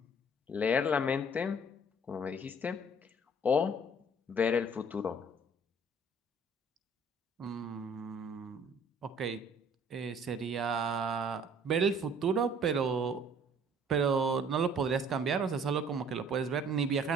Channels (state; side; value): normal; both; correlation 0.55